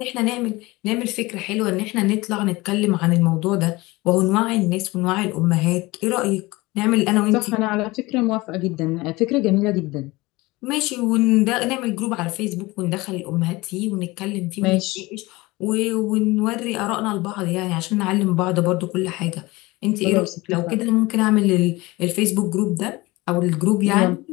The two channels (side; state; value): right; quieter; 21.6 dB